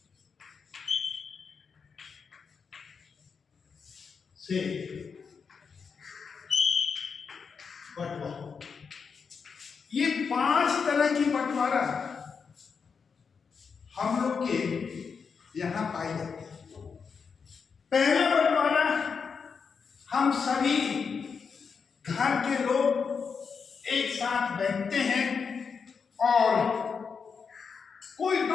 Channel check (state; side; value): quieter; right; 5.8 dB